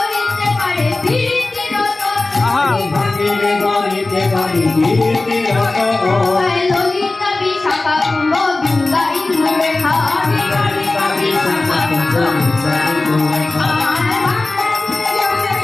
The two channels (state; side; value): quieter; right; 3.2 dB